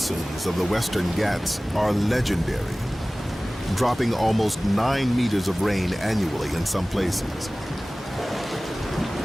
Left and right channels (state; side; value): normal; both; correlation 0.98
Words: of the Western Ghats are legendary, dropping almost 9 meters of rain annually in some places.